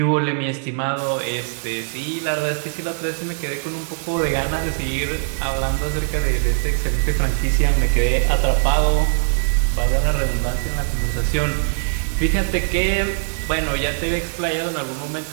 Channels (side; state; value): left; silent; 65 dB below the other